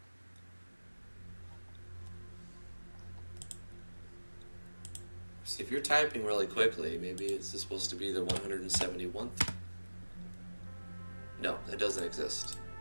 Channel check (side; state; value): both; inverted; correlation -1.00